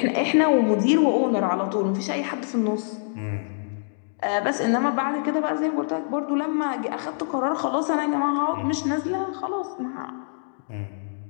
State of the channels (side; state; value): right; silent; digital silence